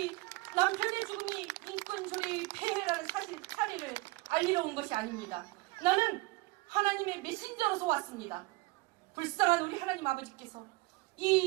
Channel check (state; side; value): quieter; left; 21.9 dB